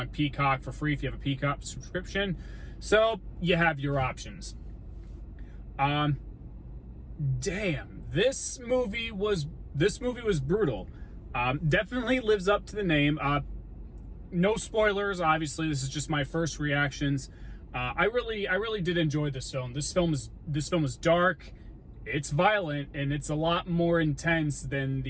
Peacock for free if you have a Peacock subscription. So you have your options. Damn, this movie was brutal. Definitely lives up to the name. No spoilers, obviously. This is just my first reactions. I really did enjoy this film. This film is dark. It's violent, and it's a lot more intense than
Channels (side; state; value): both; identical; correlation 1.00